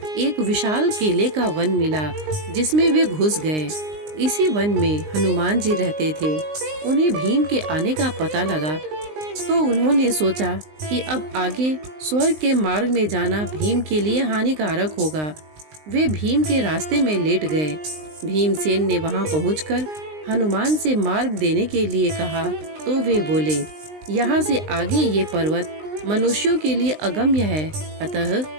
एक विशाल केले का वन मिला, जिसमें वे घुस गए। इसी वन में हनुमान जी रहते थे। उन्हें भीम के आने का पता लगा, तो उन्होंने सोचा कि अब आगे स्वर्ग के मार्ग में जाना भीम के लिए हानिकारक होगा। वे भीम के रास्ते में लेट गए। भीमसेन ने वहां पहुंचकर हनुमान से मार्ग देने के लिए कहा, तो वे बोले, यहाँ से आगे ये पर्वत मनुष्यों के लिए अगम्य है, अतः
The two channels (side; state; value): left; late; 19 ms